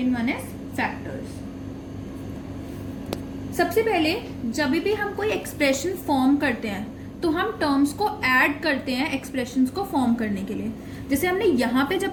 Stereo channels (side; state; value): both; identical; correlation 1.00